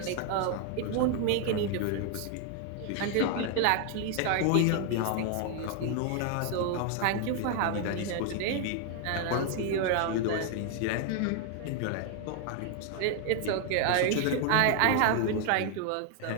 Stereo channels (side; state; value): both; different; correlation 0.00